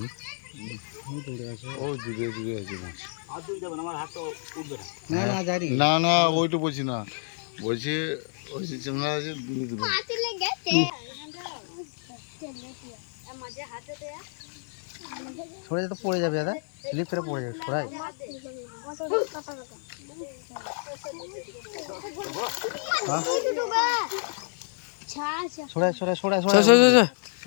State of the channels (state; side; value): silent; right; digital silence